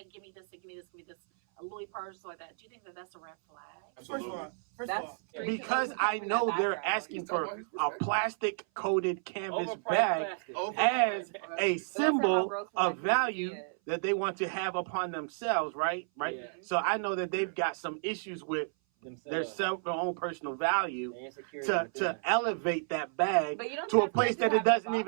give me this, a Louis purse, like that, do you think that that's a red flag? First of all, because I know they're asking for a plastic coated canvas bag as a symbol of value that they want to have upon themselves, right? Yeah. So I know that they've got some issues with their own personal value to elevate that bag to a place that it doesn't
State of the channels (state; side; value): silent; left; 57 dB below the other